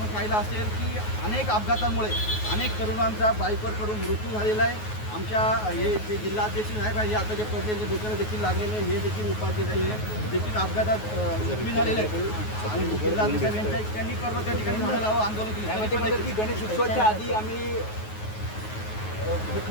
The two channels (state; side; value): late; right; 9.4 ms